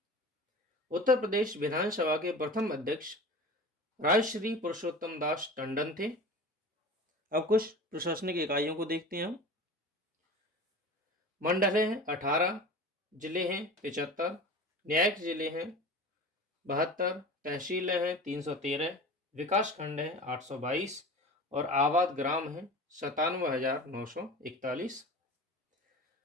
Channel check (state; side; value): normal; both; correlation 0.35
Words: उत्तर प्रदेश विधानसभा के प्रथम अध्यक्ष राजश्री पुरुषोत्तम दास टंडन थे। अब कुछ प्रशासनिक इकाइयों को देखते हैं हम। मंडल हैं 18, जिले हैं 75, न्यायिक जिले हैं 72, तहसीलें हैं 313, विकास खंड हैं 822 और आबाद ग्राम हैं 97,941।